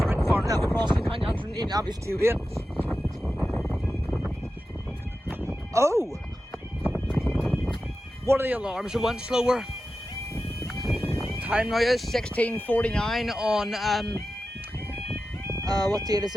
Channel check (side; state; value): both; normal; correlation 0.92